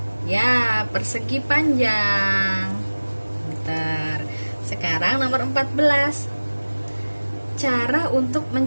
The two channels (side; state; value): both; inverted; correlation -1.00